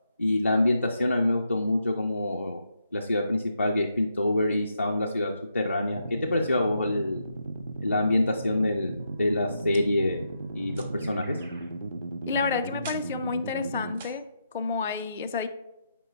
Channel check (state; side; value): inverted; both; correlation -0.82